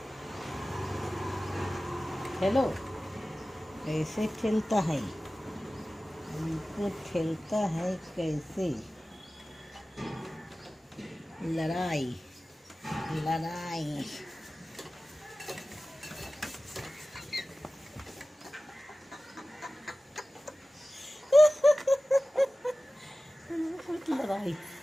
हेलो, कैसे खेलता है, इनको खेलता है कैसे। लड़ाई लड़ाई। लड़ाई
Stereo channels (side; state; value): both; normal; correlation 0.96